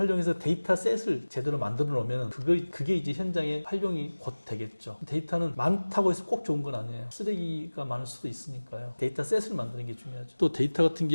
데이터 셋을 제대로 만들어 놓으면 그게 이제 현장에 활용이 곧 되겠죠. 데이터는 많다고 해서 꼭 좋은 건 아니에요. 쓰레기가 많을 수도 있으니까요. 데이터 셋을 만드는 게 중요하죠. 또 데이터 같은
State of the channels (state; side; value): inverted; both; correlation -1.00